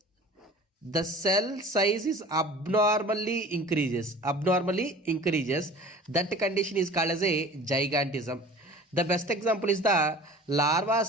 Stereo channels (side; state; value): both; normal; correlation 0.43